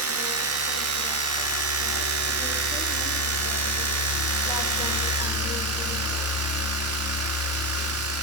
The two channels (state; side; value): normal; both; correlation 0.09